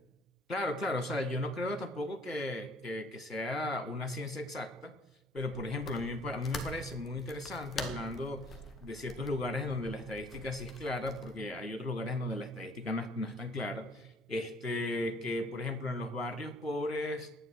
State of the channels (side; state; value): both; normal; correlation 0.57